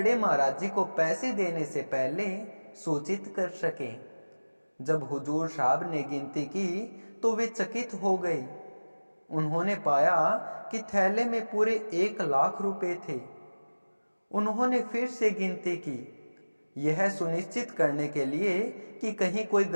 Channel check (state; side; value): inverted; both; correlation -1.00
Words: महाराज जी को पैसे देने से पहले सूचित कर सकें। जब हुजूर साहब ने गिनती की तो वे चकित हो गए। उन्होंने पाया कि थैले में पूरे 1,00,000 रुपए थे। उन्होंने फिर से गिनती की, यह सुनिश्चित करने के लिए कि कहीं कोई